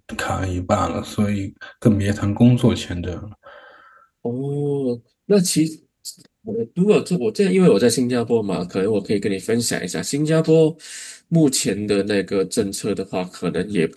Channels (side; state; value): both; identical; correlation 1.00